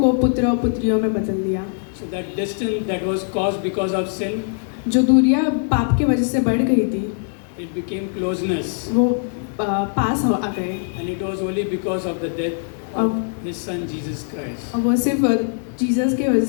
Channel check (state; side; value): silent; right; 63 dB below the other